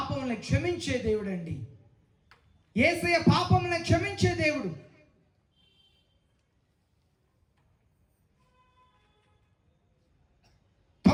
క్షమించే దేవుడు అండి. యేసయ్య పాపములను క్షమించే దేవుడు.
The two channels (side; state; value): both; identical; correlation 1.00